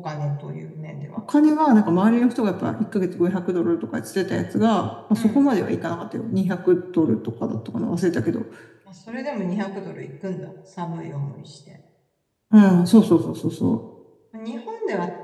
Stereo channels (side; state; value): both; identical; correlation 1.00